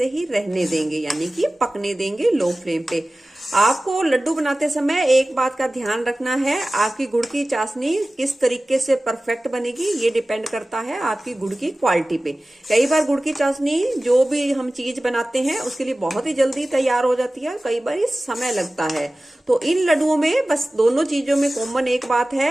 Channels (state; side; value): normal; both; correlation 0.97